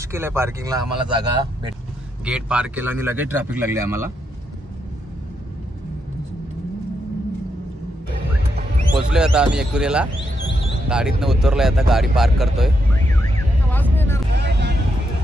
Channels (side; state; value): both; normal; correlation 0.81